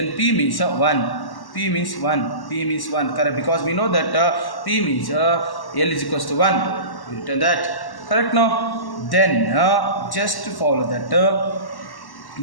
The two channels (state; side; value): late; right; 1.1 ms